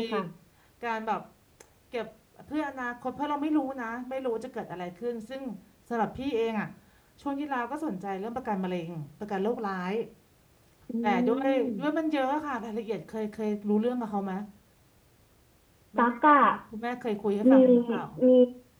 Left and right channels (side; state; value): both; identical; correlation 1.00